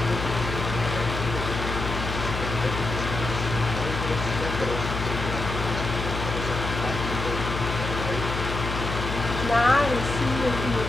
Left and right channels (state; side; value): noise; left; hum, 4 dB below the sound